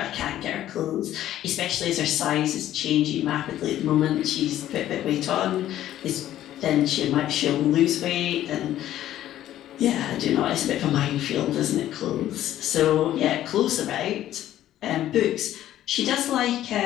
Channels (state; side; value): quieter; right; 12.7 dB